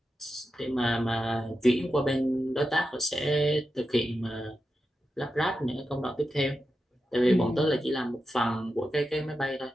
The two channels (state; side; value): normal; both; correlation 0.90